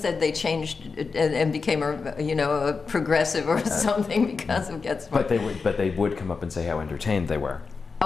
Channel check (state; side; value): quieter; right; 4.7 dB